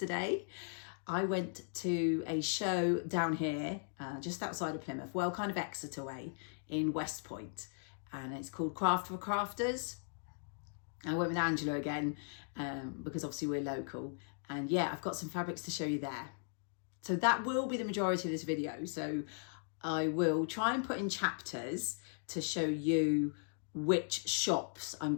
I went to a show down here, just outside of Plymouth, well, kind of Exeter way, in West Point. And it's called Craft for Crafters. I went with Angela again because obviously we're local, and yeah, I've got some fabrics to show you there. So that will be the majority of this video. So I will try and put in chapters to show you which shops I'm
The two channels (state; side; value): silent; right; digital silence